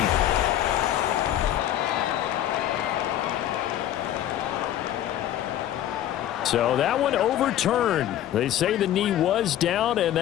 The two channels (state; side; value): quieter; right; 12.0 dB